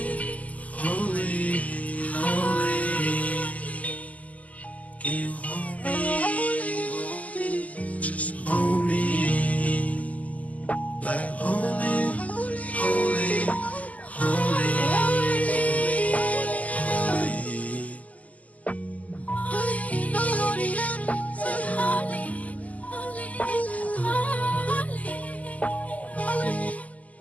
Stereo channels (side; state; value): right; late; 0.074 ms